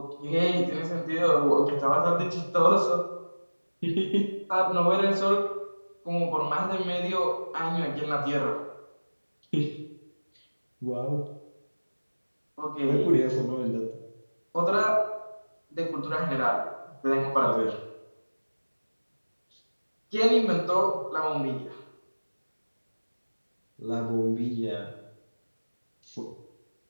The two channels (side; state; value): both; inverted; correlation -1.00